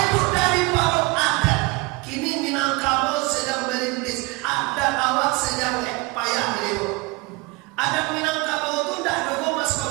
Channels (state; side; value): quieter; left; 25.2 dB